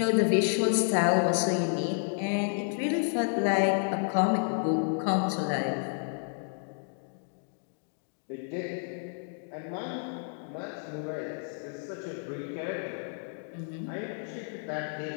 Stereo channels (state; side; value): silent; right; 57 dB below the other